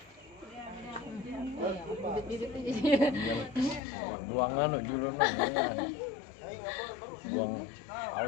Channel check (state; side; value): drops out; right; at 3.8 s